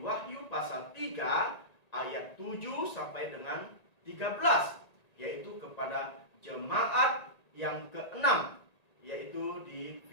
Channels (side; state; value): right; late; 1.8 ms